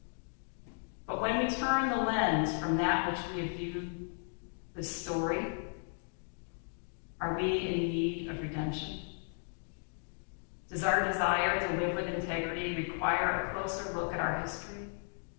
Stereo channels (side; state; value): right; silent; 54 dB below the other